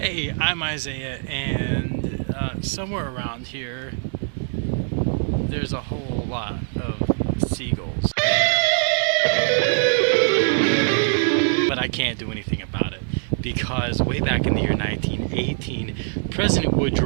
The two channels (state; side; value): silent; left; 64 dB below the other